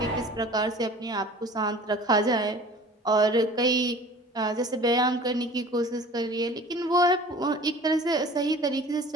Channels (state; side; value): normal; both; correlation 0.44